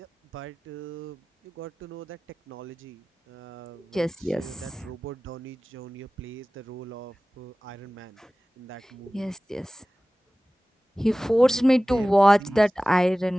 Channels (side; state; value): both; normal; correlation 0.97